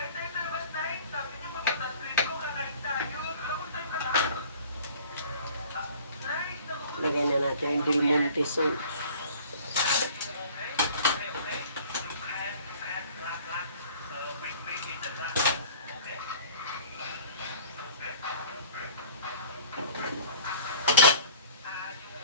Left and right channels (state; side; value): inverted; both; correlation -0.48